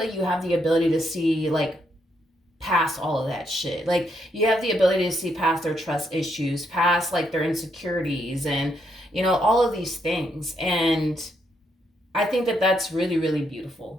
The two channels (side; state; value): both; normal; correlation 0.77